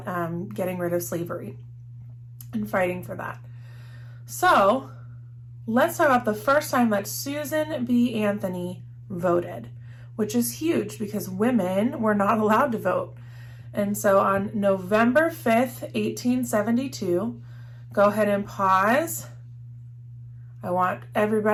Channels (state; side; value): identical; both; correlation 1.00